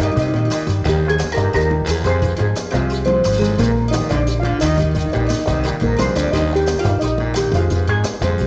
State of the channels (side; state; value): both; identical; correlation 1.00